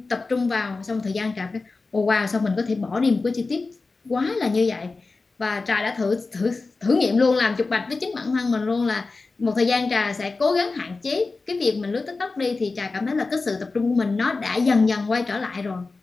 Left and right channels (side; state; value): right; quieter; 3.8 dB